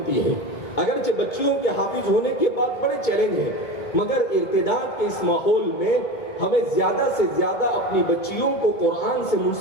ہیں. اگرچہ بچیوں کے حافظ ہونے کے بعد بڑے چیلنج ہیں، مگر ارتداد کے اس ماحول میں ہمیں زیادہ سے زیادہ اپنی بچیوں کو قرآن سے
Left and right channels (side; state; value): right; late; 2.2 ms